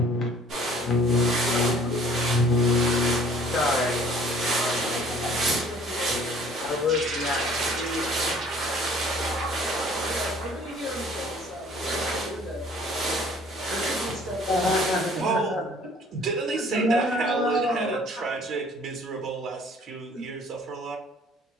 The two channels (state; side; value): normal; both; correlation 0.54